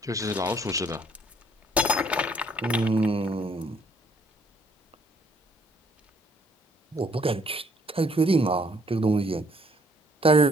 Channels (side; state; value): both; normal; correlation 0.64